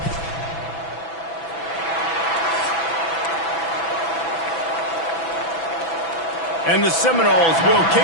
And the Seminoles will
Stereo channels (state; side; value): late; right; 6.0 ms